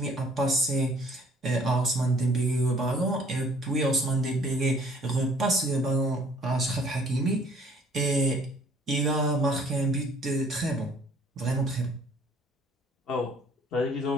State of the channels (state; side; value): normal; both; correlation 0.58